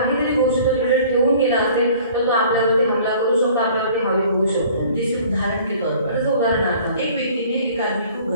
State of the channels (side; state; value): both; inverted; correlation -0.51